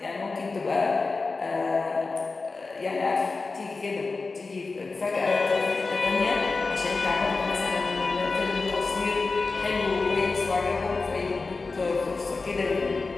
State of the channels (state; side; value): quieter; right; 3.9 dB